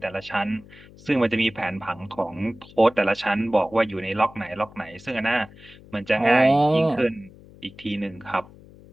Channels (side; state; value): left; noise; hum, 22 dB below the sound